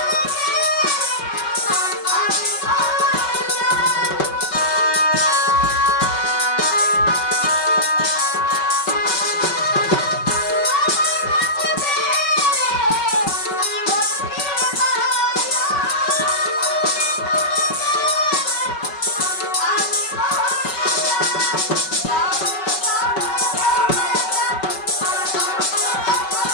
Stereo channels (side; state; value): right; late; 5.3 ms